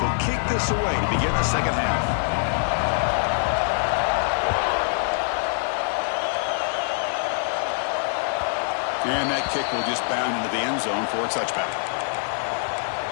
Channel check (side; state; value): right; silent; digital silence